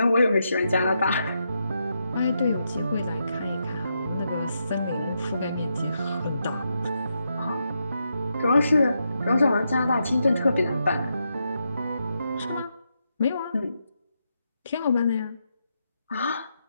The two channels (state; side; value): inverted; both; correlation -0.83